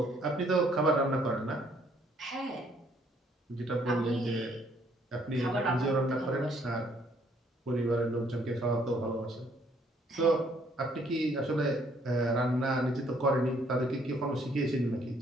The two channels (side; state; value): both; normal; correlation 0.65